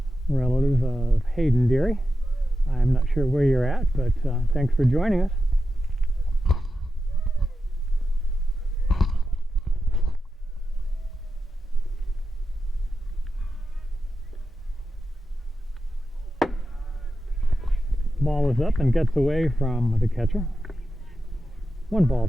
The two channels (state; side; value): normal; both; correlation 0.90